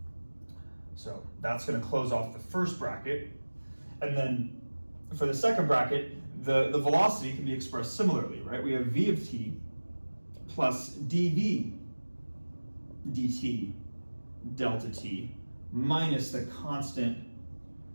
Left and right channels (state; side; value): inverted; both; correlation -1.00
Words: So that's going to close off the first bracket. And then for the second bracket, the velocity can be expressed similarly, right? We have v of t plus dv dt delta t minus the constant